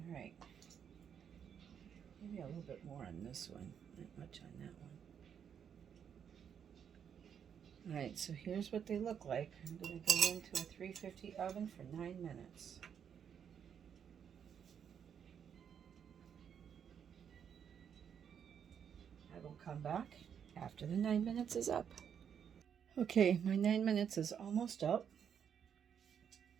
All right. Maybe a little bit more on this one, not much on that one. Alright, so here's what they look like. I'm going to go into a 350 oven for 9 minutes. I will come back after the 9 minutes is up. Okay, my 9 minutes is almost up.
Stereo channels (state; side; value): quieter; left; 8.0 dB